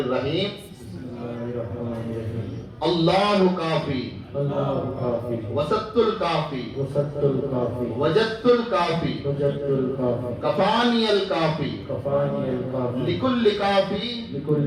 اللہ کافی وسط الکافی وجدت الکافی کفانی الکافی لکل کافی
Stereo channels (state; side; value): identical; both; correlation 1.00